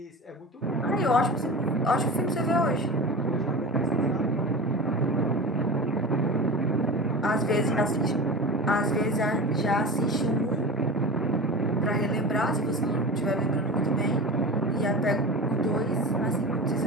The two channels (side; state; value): both; normal; correlation 0.30